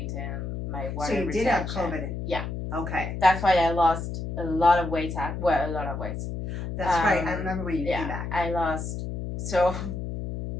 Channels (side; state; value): left; noise; hum, 5 dB below the sound